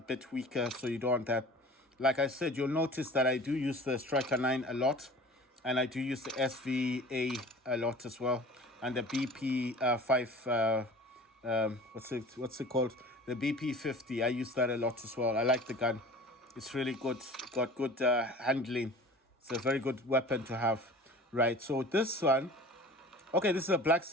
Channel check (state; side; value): normal; both; correlation 0.42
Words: weaker, so you don't want that. Like I said, you'll notice that I do use the Striker 9 a lot, and I do use the SVA a lot as well, and the BP 5 what's it called, the BP50. I use that a lot as well. I like the gun. It's really good. Got good handling. It's a very good weapon to have. Right, so this one, okay, this is a black